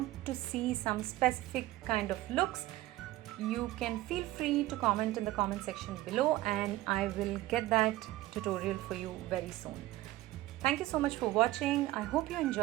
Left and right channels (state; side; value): quieter; left; 16.8 dB